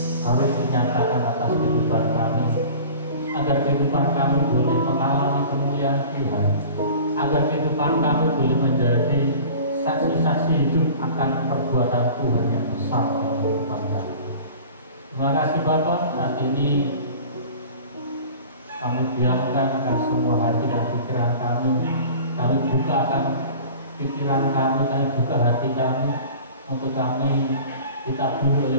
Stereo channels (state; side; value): inverted; both; correlation -0.41